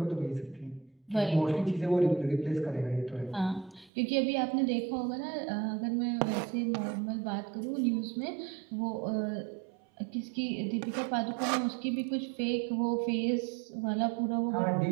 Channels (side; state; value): left; drops out; at 3.9 s